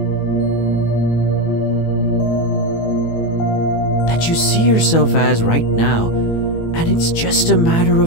That you see yourself as right now, and it's just a matter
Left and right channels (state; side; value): late; right; 18 ms